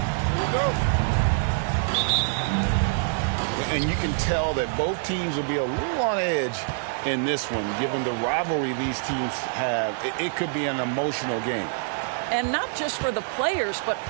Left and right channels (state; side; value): silent; left; digital silence